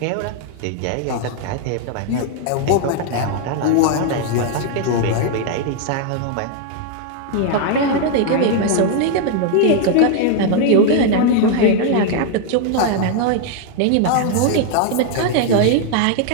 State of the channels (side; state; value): both; different; correlation 0.00